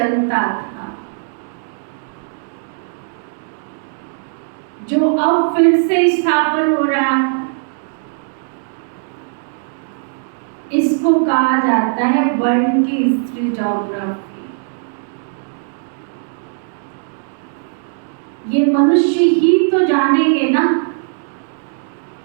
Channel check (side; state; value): left; silent; digital silence